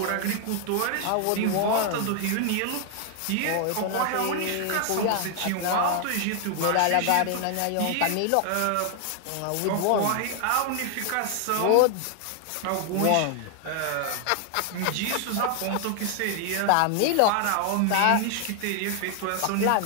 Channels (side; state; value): both; different; correlation 0.00